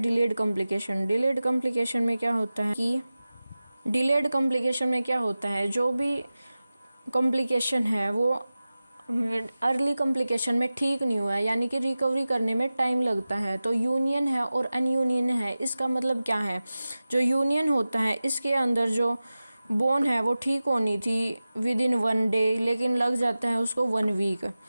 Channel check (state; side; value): inverted; both; correlation -0.96